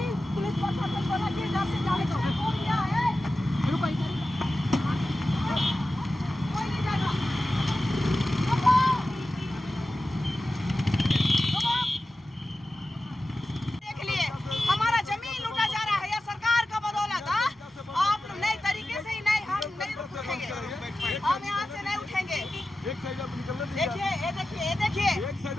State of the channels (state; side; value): normal; both; correlation 0.94